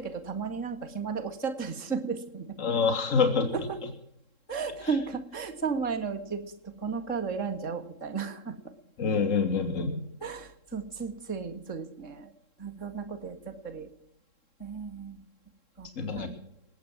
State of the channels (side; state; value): right; late; 3.7 ms